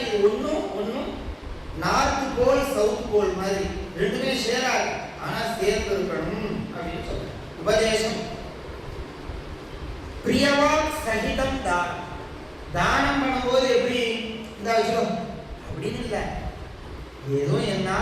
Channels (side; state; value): both; identical; correlation 1.00